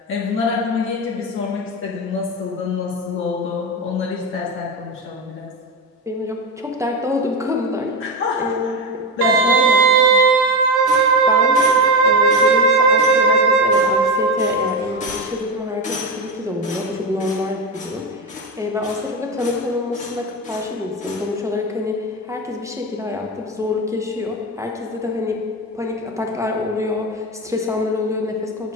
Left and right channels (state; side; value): normal; both; correlation 0.16